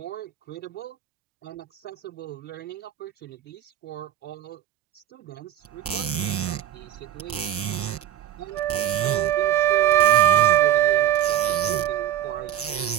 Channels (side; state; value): left; quieter; 11.8 dB